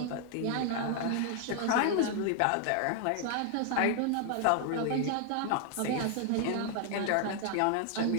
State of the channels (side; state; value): both; different; correlation 0.00